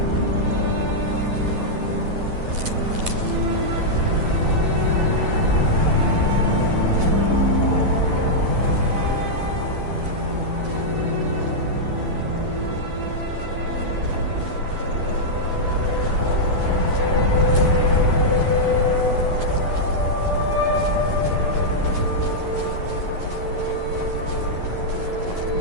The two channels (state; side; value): late; left; 11 ms